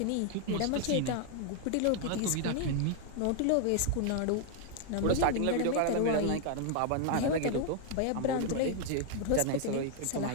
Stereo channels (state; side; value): different; both; correlation 0.00